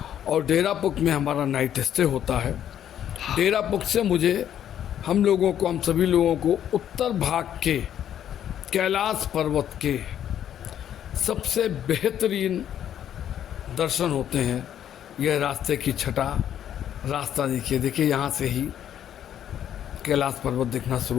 और डेरापुक में हमारा नाइट स्टे होता है। डेरापुक से हम सभी लोगों को उत्तर भाग के कैलाश पर्वत के सबसे बेहतरीन दर्शन होते हैं। यह रास्ते की छठा रास्ता देखिए यहाँ से ही कैलाश पर्वत दिखना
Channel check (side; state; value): right; quieter; 10.2 dB